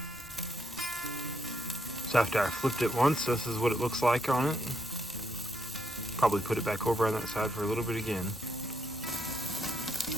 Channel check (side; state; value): both; normal; correlation 0.77